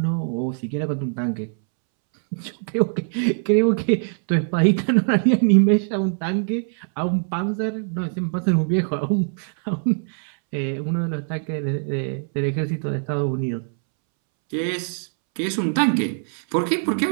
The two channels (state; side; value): silent; left; 64 dB below the other